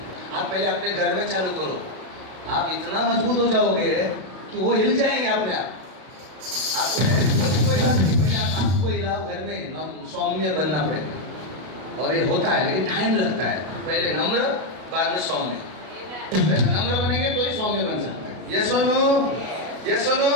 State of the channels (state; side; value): late; left; 32 ms